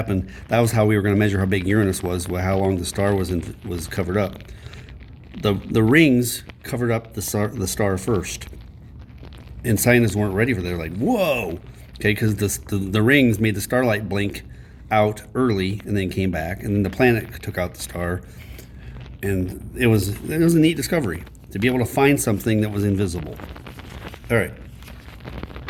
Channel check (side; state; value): both; identical; correlation 1.00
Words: that was how we were going to measure how big Uranus was, how long the star was covered up. The rings covered up the star first. And scientists weren't ready for that. They're like, whoa, okay, because the rings made the starlight blink out early and then came back, and then the planet took out the star, and it was a neat discovery to be able to find something that was invisible. All right,